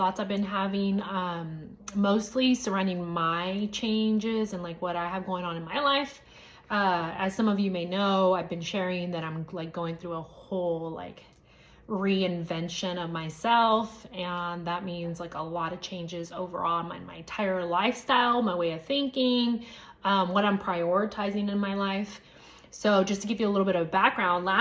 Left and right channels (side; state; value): both; identical; correlation 1.00